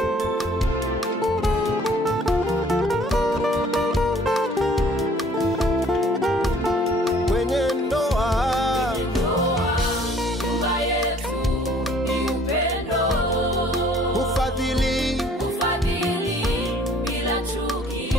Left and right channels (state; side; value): normal; both; correlation 0.56